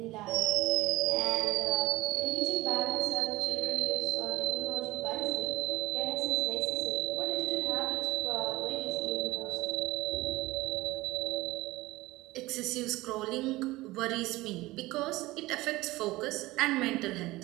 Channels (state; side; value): quieter; left; 19.3 dB